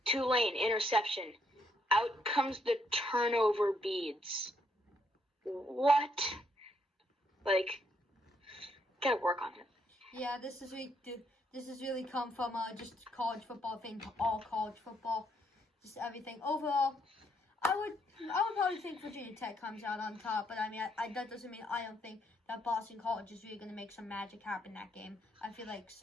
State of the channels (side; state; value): both; normal; correlation 0.73